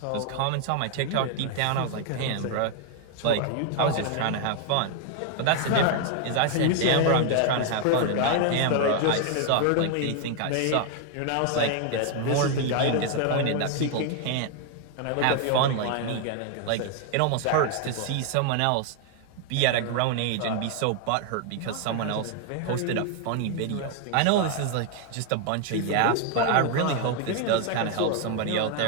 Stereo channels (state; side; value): different; both; correlation 0.00